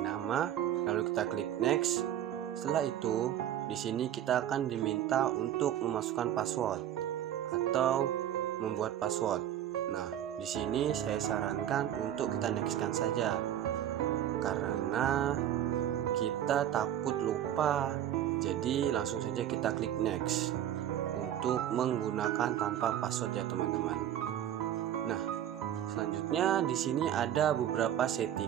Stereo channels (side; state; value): left; quieter; 11.0 dB